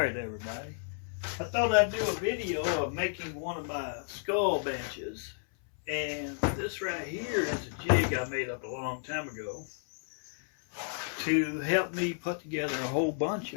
Alright everybody, I thought I'd do a video of making one of my skull benches, and this right here is a jig I made up a long time ago to help me put together a whole bunch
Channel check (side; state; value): right; silent; 56 dB below the other